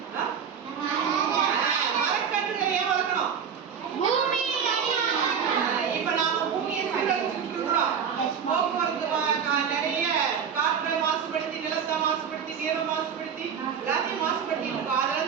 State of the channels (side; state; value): left; quieter; 7.3 dB